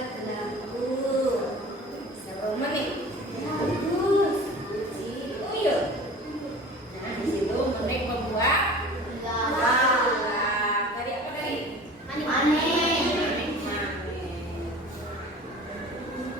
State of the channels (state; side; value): normal; both; correlation 0.41